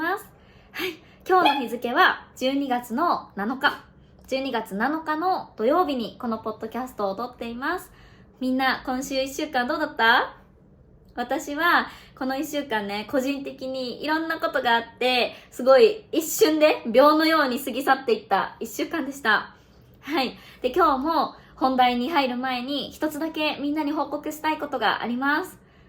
す。はい、今日の日付は12月の7日。12月7日の土曜日にこのポッドキャストを撮っています。みんな今週1週間どうだった？私はこの1週間ね、個人的にいろんなことがあって、すごい一瞬で秒のように過ぎ去っていった1週間でした。はい。で、今日も本題に入る前に一つだけみんなに報告したいことがあります。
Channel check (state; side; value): identical; both; correlation 1.00